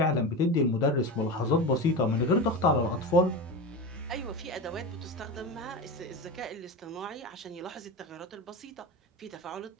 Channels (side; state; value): both; normal; correlation 0.23